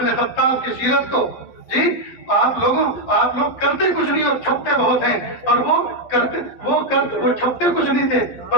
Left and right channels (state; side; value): late; right; 12 ms